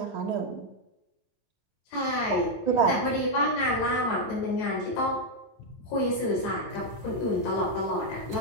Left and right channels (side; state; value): right; late; 9.1 ms